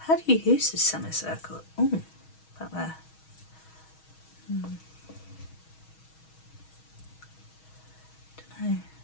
How do you use this semicircle? Oh, about there. Don't know.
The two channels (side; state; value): right; late; 6.3 ms